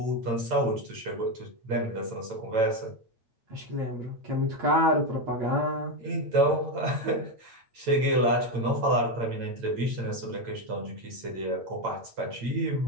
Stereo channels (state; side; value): late; left; 8.8 ms